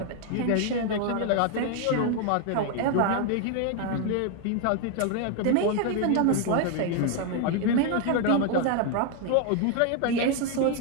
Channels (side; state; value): both; different; correlation 0.00